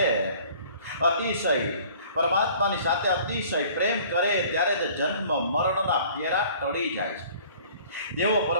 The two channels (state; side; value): inverted; both; correlation -0.51